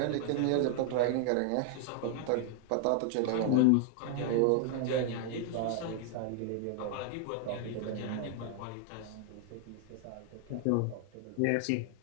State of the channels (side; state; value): both; different; correlation 0.00